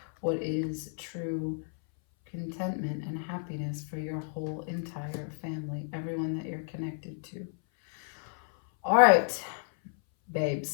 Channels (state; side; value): silent; right; 57 dB below the other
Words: what is true contentment and happiness for your whole entire family, everyone that you're connected to. All right,